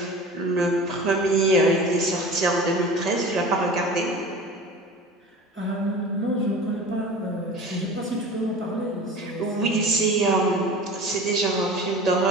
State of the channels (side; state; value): both; normal; correlation 0.37